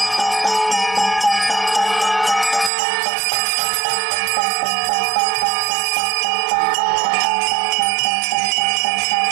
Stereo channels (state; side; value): drops out; left; at 2.7 s